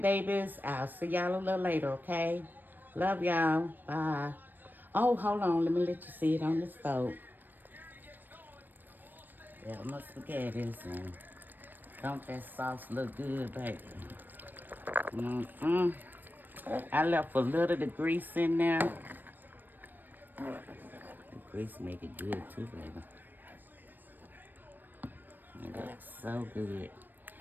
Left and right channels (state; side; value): late; left; 0.091 ms